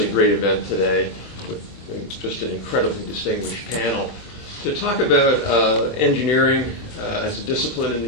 great event today, with just an incredibly distinguished panel to talk about engineering as a discipline in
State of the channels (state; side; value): late; right; 24 ms